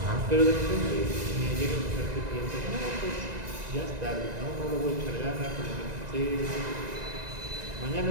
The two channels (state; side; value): late; left; 1.9 ms